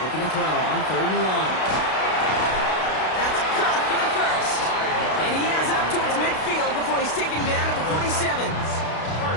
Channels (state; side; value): late; right; 32 ms